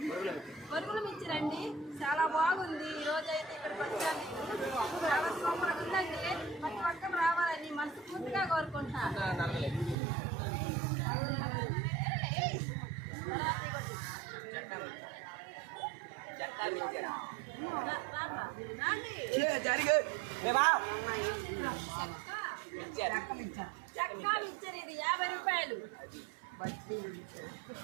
బరుగులు మిక్చర్ అండి, చాలా బాగుంది. ఈరోజు అయితే ఇక్కడికి వచ్చాను. చాలా సూపర్ ఉందండి. ప్రతి ఒక్కరు రావాలని మనస్ఫూర్తిగా కోరుకుంటున్నాను. చక్కా మిక్చర్ ఇది 50 రూపాయలు.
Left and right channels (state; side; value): drops out; left; at 10.0 s